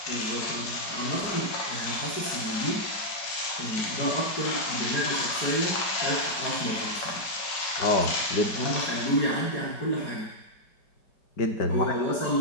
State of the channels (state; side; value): late; right; 5.3 ms